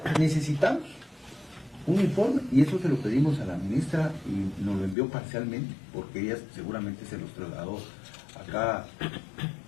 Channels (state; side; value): drops out; right; at 5.0 s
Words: necesitamos un informe y eso se lo pedimos a la ministra y nos lo envió parcialmente porque ella seguramente se los trasladó acá.